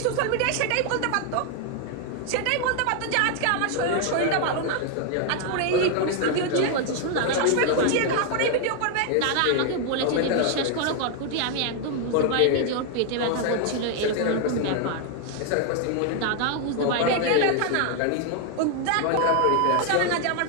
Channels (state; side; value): different; both; correlation 0.00